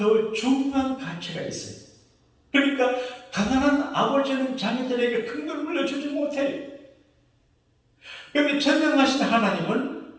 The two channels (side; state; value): both; identical; correlation 1.00